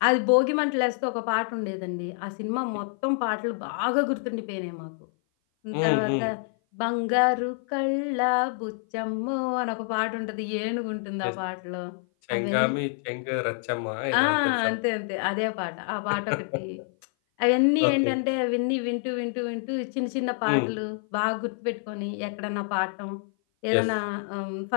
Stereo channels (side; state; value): right; silent; 56 dB below the other